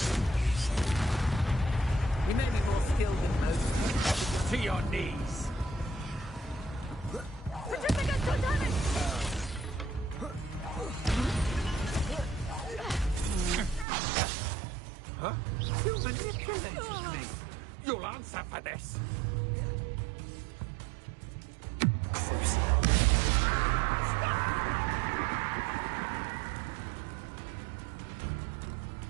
You may be more skilled than most. To your knees. Huh? You'll answer for this.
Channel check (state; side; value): drops out; left; at 13.9 s